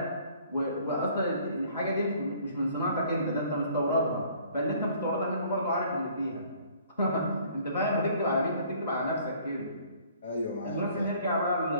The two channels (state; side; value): inverted; both; correlation -0.56